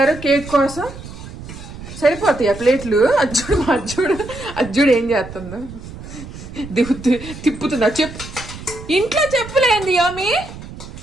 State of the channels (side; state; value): right; noise; rumble, 13 dB below the sound